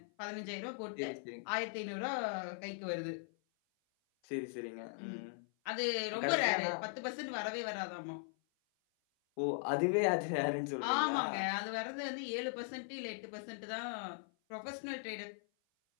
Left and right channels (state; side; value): silent; right; 51 dB below the other